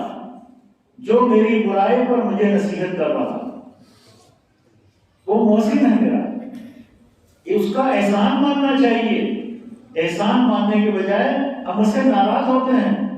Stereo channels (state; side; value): identical; both; correlation 1.00